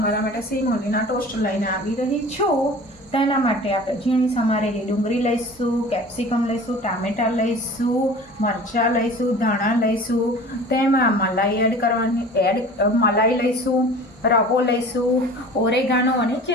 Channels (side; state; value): both; normal; correlation 0.42